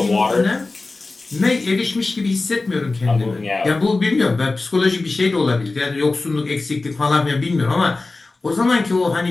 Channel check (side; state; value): right; quieter; 3.4 dB